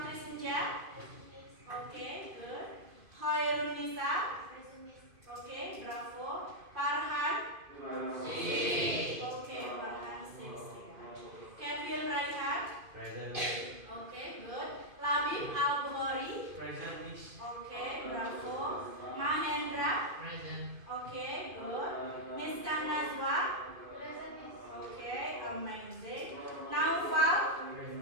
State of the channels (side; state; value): left; late; 2.5 ms